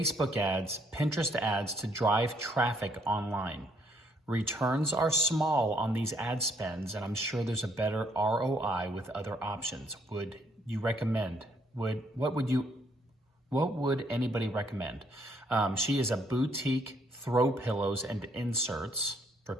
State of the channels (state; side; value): normal; both; correlation 0.68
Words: ads, Pinterest ads to drive traffic online. Returns are small on these ad spends, and I'm sure there's a better ROI with other options. Would you recommend? What would anybody recommend? She is a boutique throw pillows and inserts for